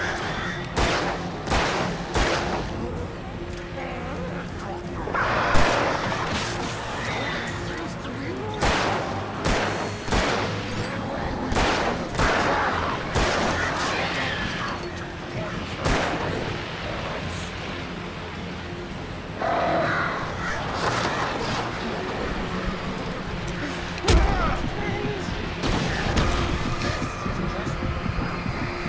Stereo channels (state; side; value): identical; both; correlation 1.00